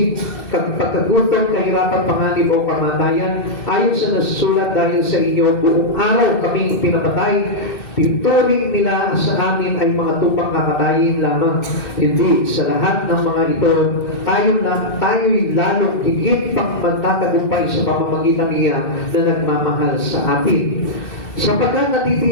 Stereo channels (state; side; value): late; right; 2.7 ms